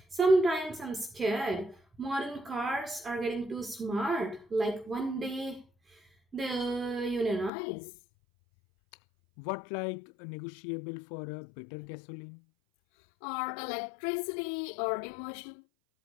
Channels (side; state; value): right; drops out; at 7.5 s